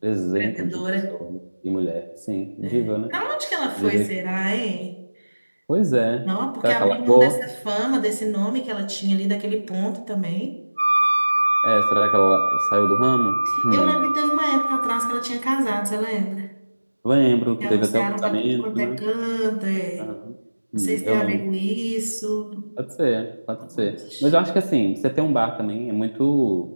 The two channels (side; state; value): both; inverted; correlation -1.00